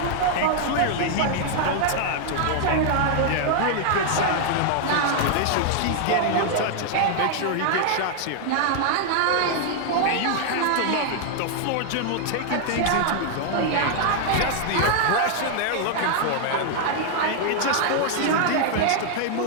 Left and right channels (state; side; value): different; both; correlation 0.00